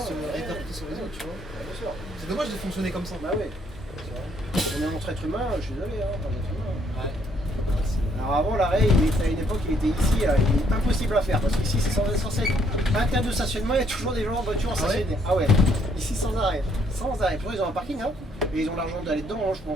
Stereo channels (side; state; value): both; normal; correlation 0.68